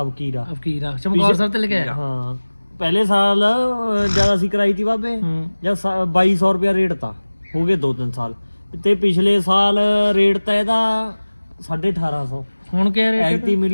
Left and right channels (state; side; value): inverted; both; correlation -1.00